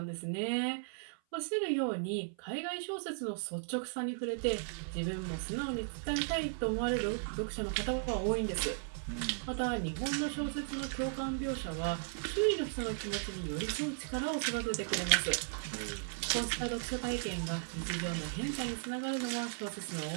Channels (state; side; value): silent; left; 54 dB below the other